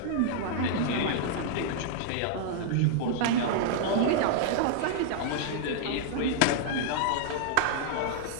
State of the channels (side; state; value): both; different; correlation -0.01